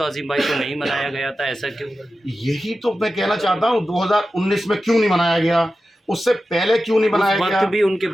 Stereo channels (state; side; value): normal; both; correlation 0.93